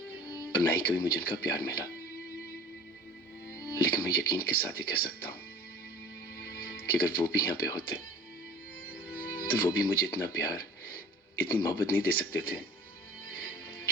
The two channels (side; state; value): both; normal; correlation 0.45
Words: न ही कभी मुझे उनका प्यार मिला। लेकिन मैं यकीन के साथ ही कह सकता हूं कि अगर वो भी यहां पे होते तो वो भी मुझे इतना प्यार, इतनी मोहब्बत नहीं दे सकते थे